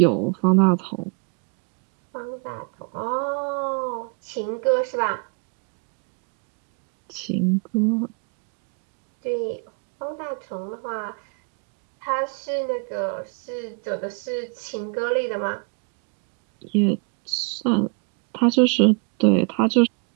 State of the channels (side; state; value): left; quieter; 36.5 dB